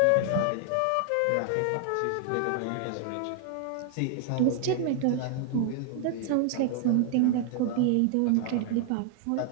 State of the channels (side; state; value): both; different; correlation 0.00